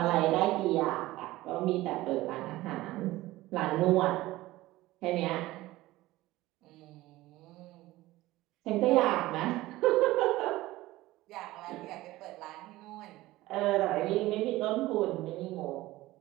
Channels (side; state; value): left; quieter; 17.7 dB